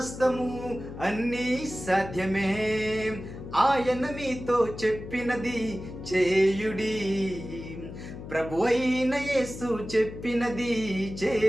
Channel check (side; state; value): left; noise; hum, 11 dB below the sound